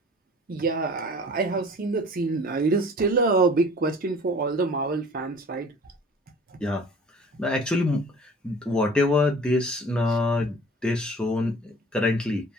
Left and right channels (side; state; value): both; normal; correlation 0.47